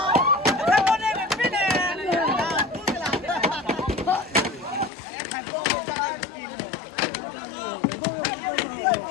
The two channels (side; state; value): right; drops out; at 4.9 s